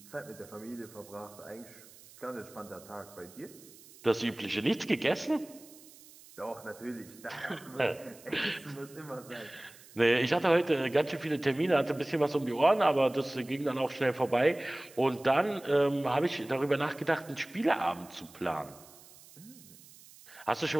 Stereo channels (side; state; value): right; noise; hiss, 22 dB below the sound